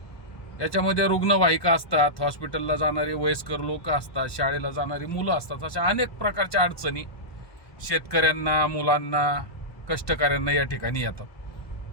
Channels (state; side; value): late; right; 1.2 ms